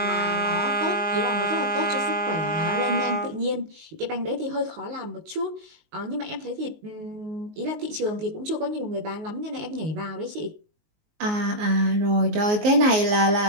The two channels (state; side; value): late; left; 19 ms